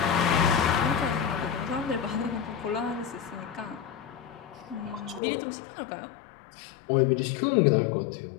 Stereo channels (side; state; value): right; drops out; at 5.2 s